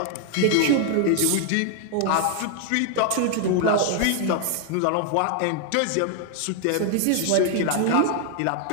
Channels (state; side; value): different; both; correlation 0.00